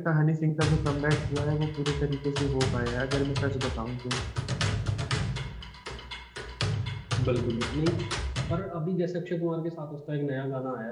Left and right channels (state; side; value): identical; both; correlation 1.00